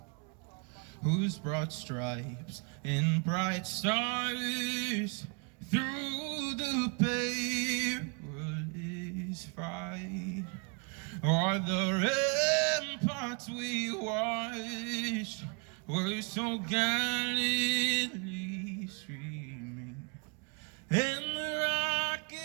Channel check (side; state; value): left; quieter; 34.9 dB